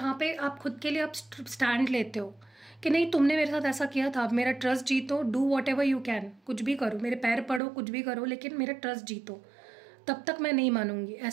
पे आप खुद के लिए आप स्टैंड लेते हो कि नहीं, तुमने मेरे साथ ऐसा किया था, अब मेरा ट्रस्ट जीतो, do what ever you can, कुछ भी करो, मेरे पैर पड़ो, कुछ भी करो, लेकिन मेरा ट्रस्ट जीतो, तब तक मैं नहीं मानूंगी।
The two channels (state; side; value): drops out; left; at 7.6 s